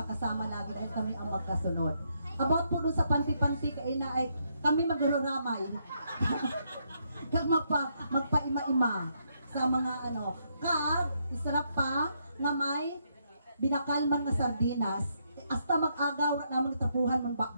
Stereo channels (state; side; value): inverted; both; correlation -0.76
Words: lagi dahil kami ang magkasunod. About po doon sa panti-panti, kaina ay kami magruramay. Kag magpaima-ima sa mga ano. Kag, isarap pa nga may binakalman na sardinas. Hasta mag-agaw na tapuhan ng